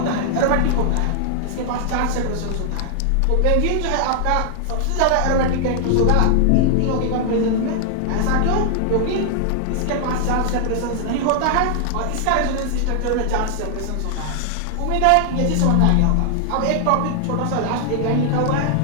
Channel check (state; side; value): different; both; correlation 0.00